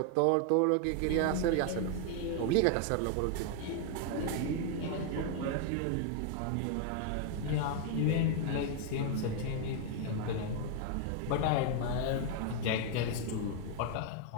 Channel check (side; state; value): both; different; correlation 0.00